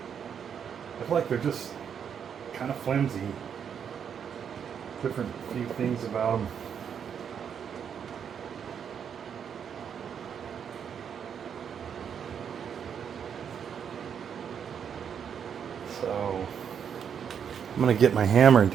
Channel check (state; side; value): quieter; left; 7.7 dB